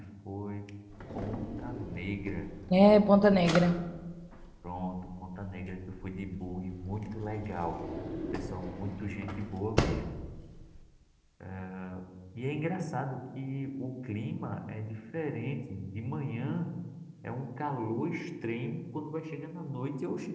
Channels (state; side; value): identical; both; correlation 1.00